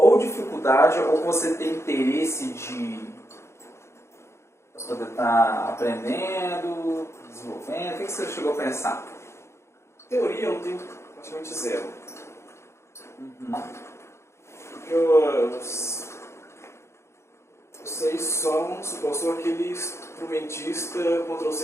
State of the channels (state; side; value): late; right; 0.13 ms